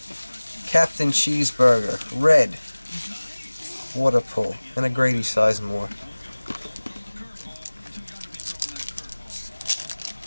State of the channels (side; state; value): both; inverted; correlation -1.00